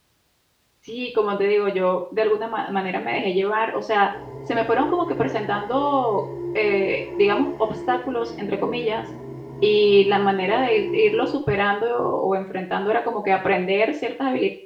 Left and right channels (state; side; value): identical; both; correlation 1.00